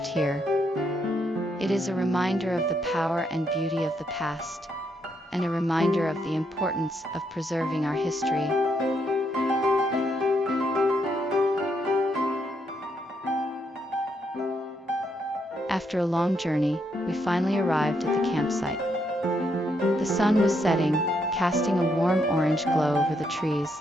here. It is a reminder of the power and beauty of the past, and a reminder of the importance of preserving our history. After a long journey, we finally arrived at the campsite. The sun was setting, casting a warm orange glow over the trees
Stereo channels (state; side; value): normal; both; correlation 0.76